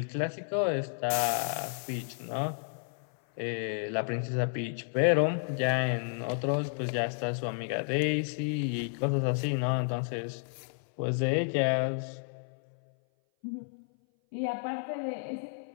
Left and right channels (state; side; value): silent; right; 57 dB below the other